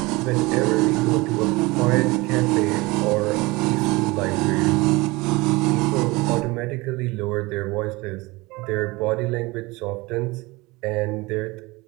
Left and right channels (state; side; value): quieter; left; 23.0 dB